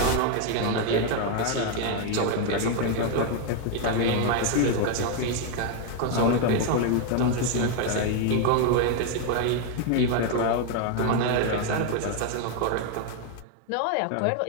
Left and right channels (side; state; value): both; different; correlation 0.01